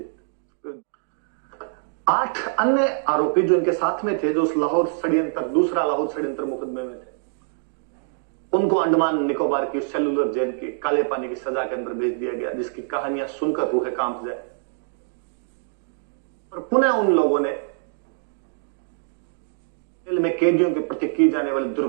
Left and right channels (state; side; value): silent; left; digital silence